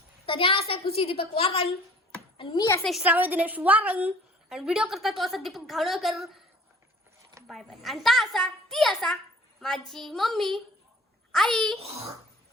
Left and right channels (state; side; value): normal; both; correlation 0.49